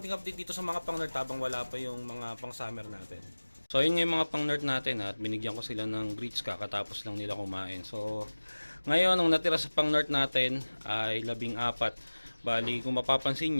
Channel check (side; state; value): both; inverted; correlation -1.00